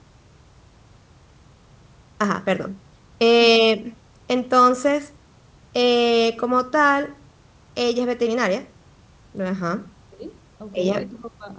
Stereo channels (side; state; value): both; identical; correlation 1.00